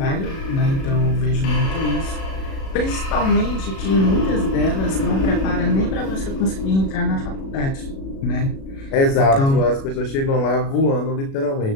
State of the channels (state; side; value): late; right; 37 ms